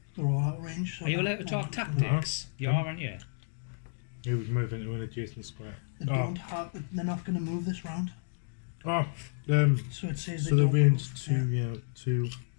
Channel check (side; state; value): right; silent; digital silence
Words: They're all out of range. So Are you allowed to talk tactics? You are, aren't you? He would move into an adjacent square. They don't have. They're not going to move this round. Oh, So it says so they the don't range move. 2, Yeah. 2.